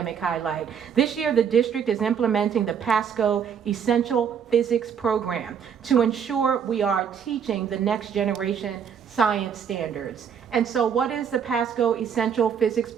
highlight. This year the district is implementing the Pasco Essential Physics program to ensure we are teaching the next generation science standards. And so what is the Pasco Essential Physics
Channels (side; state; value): left; quieter; 7.6 dB